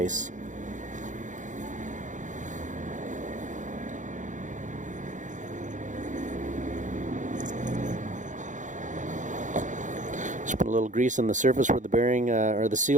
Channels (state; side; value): late; left; 0.36 ms